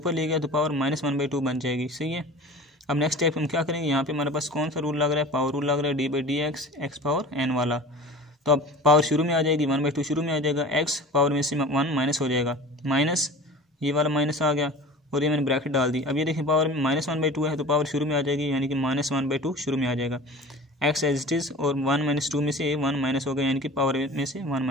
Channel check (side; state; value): both; normal; correlation 0.38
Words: ले गया तो पावर माइनस 1/2 बन जाएगी, सही है। अब नेक्स्ट स्टेप हम क्या करेंगे, यहाँ पे हमारे पास कौन सा रूल लग रहा है, पावर रूल लग रहा है, d by d x x power n वाला। तो अब पावर शुरू में आ जाएगी, 1/2 शुरू में आ जाएगा, एक्स पावर में से 1 माइनस हो जाएगा, माइनस ये वाला माइनस आ गया और ये मैंने ब्रैकेट डाल दी। अब ये देखिए पावर माइनस 1/2 है तो पावर शुरू में आ जाएगी, यानी कि माइनस 1/2 शुरू में आ जाएगा। एक्स एज इट इज़ और 1 - 2 में से 1 माइनस हो गया, यानी कि पावर में से 1